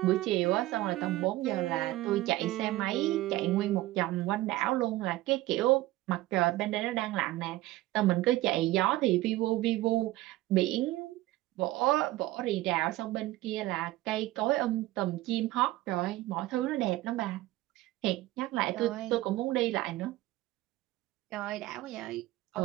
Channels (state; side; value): quieter; left; 17.2 dB